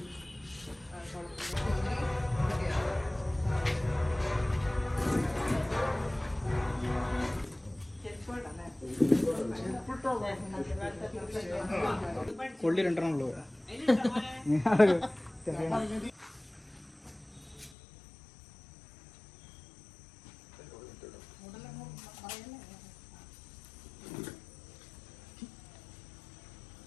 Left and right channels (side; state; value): right; drops out; at 17.7 s